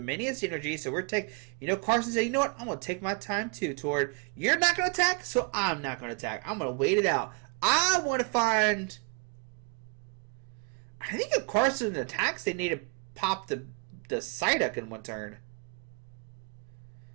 Energy. So we're taking. You know, Carson said, you know what? I'm going to take my time too, Tord. You're not going to attack, so I'm not going to attack. I'm going to wait it out. I want to find. I think if Carson attacks, they need to pop the Psyduck in one turn.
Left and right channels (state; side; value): quieter; left; 32.2 dB